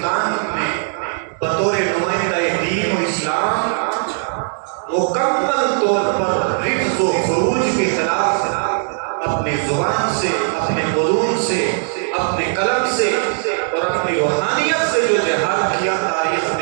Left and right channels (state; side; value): silent; left; digital silence